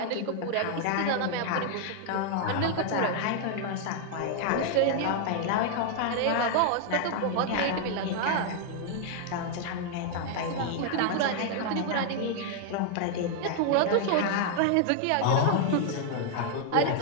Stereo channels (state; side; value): different; both; correlation 0.00